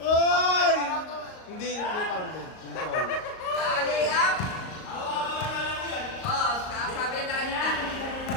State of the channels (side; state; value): right; late; 38 ms